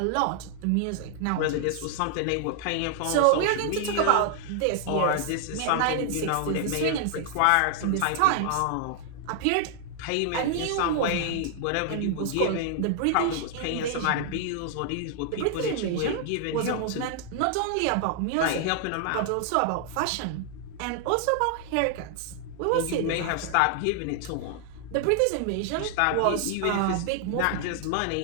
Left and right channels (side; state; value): both; different; correlation 0.00